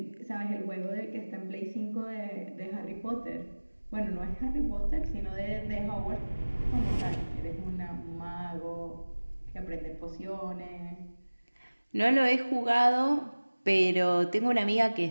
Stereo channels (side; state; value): both; inverted; correlation -1.00